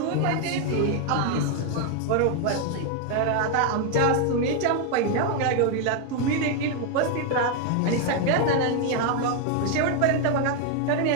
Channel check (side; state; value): both; different; correlation 0.01